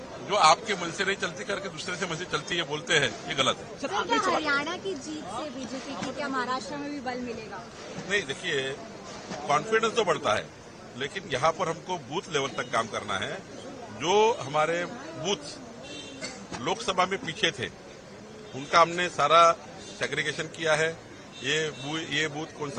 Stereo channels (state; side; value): identical; both; correlation 1.00